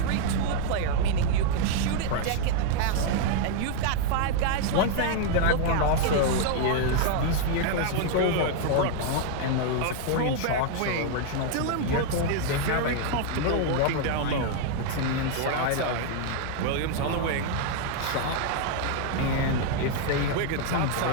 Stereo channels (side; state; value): both; different; correlation 0.00